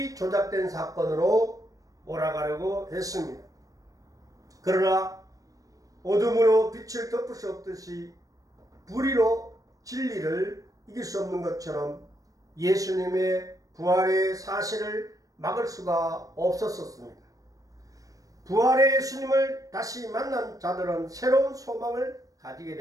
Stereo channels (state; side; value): late; left; 0.17 ms